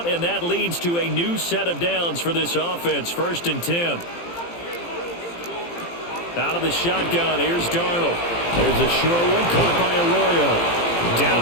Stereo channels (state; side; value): late; right; 18 ms